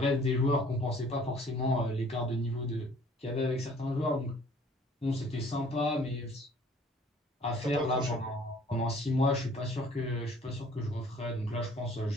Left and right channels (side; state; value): both; normal; correlation 0.55